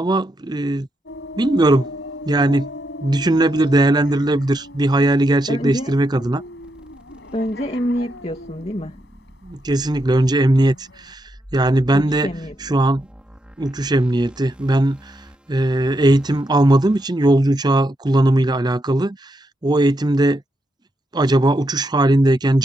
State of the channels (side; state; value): both; normal; correlation 0.82